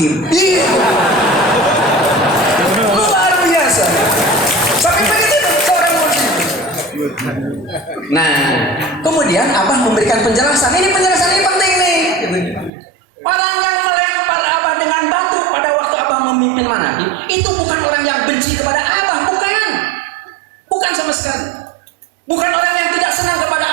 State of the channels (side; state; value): left; drops out; at 12.7 s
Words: Luar biasa. Sampai begitu seorang muslim. Nah, kemudian Abah memberikan penjelasan. Ini penjelasan ini penting nih. Orang yang melempar Abah dengan batu pada waktu Abah memimpin manakib, itu bukan orang yang benci kepada Abah, bukan. Bukan sama sekali. Bukan orang yang tidak senang kepada